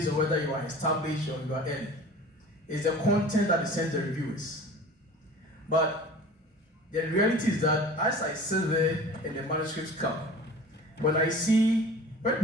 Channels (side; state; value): both; normal; correlation 0.41